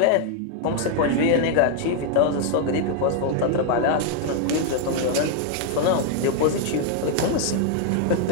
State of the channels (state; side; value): different; both; correlation 0.00